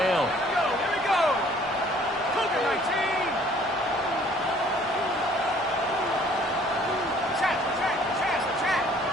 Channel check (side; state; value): both; normal; correlation 0.57